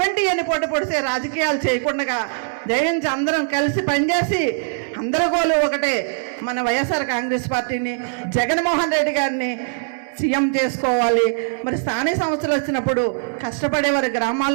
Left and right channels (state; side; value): silent; left; 63 dB below the other